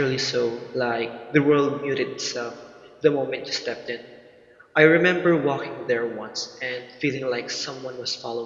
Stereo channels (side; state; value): both; identical; correlation 1.00